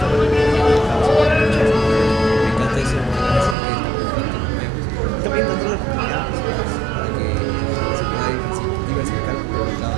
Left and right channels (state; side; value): drops out; left; at 3.6 s